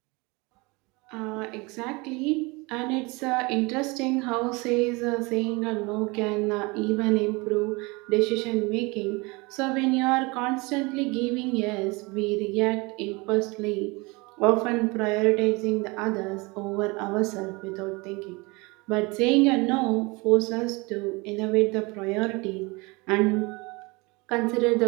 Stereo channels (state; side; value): quieter; left; 25.9 dB